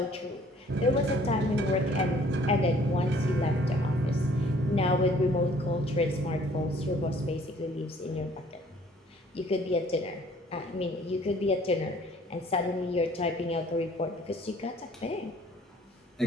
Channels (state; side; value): normal; both; correlation 0.57